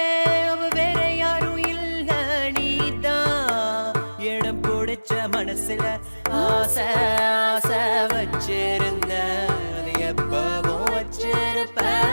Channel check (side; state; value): both; inverted; correlation -1.00